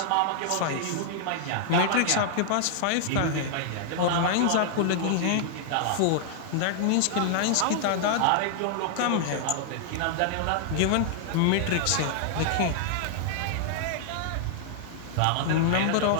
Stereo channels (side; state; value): both; different; correlation -0.01